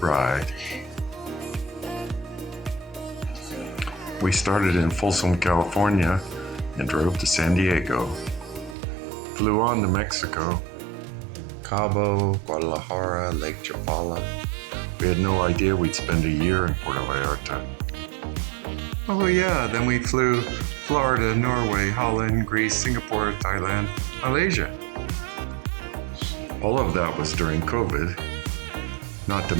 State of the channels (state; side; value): drops out; left; at 8.8 s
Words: We started in Folsom, California and drove to San Diego. Flew on to Mexico, Cabo, Guadalajara, Lake Chapala. We had no idea we'd spend a year in Puerto Vallarta. Oh yeah, then we flew Florida, Norway, Holland, Greece, Singapore, Thailand, Malaysia. All of that was during COVID, not to